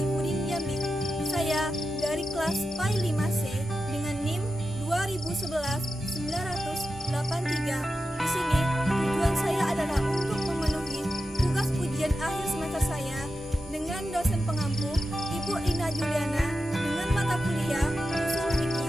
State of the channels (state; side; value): normal; both; correlation 0.90